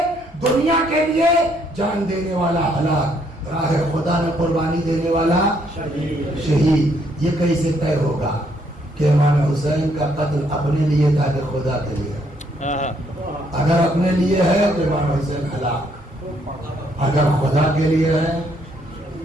دنیا کے لیے جان دینے والا ہلاک، راہ خدا میں قربانی دینے والا شہید۔ یہ کیسے طے ہوگا کہ امام حسین کا قتل اپنے لیے تھا کہ خدا کے لیے؟ اگر اپنے لیے ہے تو امام حسین ہلاک، اگر خدا کے لیے ہے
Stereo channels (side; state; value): both; normal; correlation 0.70